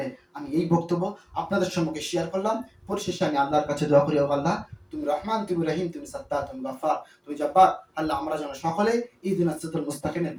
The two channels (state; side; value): identical; both; correlation 1.00